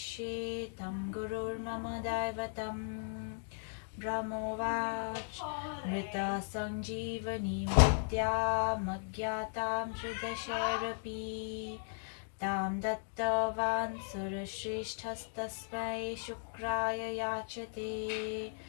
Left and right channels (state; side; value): silent; right; digital silence